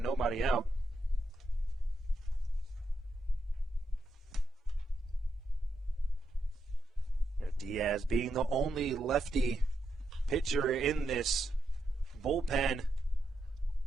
nobody out. Diaz being the only lefty pitcher in this bullpen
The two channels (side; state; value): both; normal; correlation 0.83